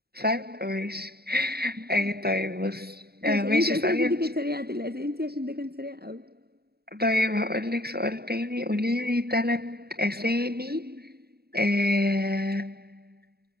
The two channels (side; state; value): left; late; 0.46 ms